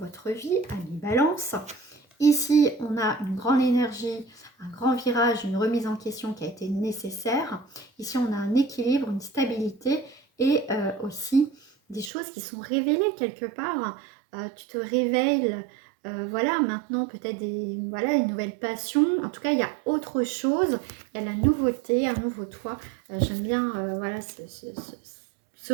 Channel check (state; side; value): drops out; left; at 12.1 s